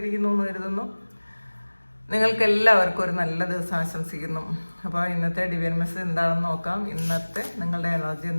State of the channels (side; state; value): both; inverted; correlation -1.00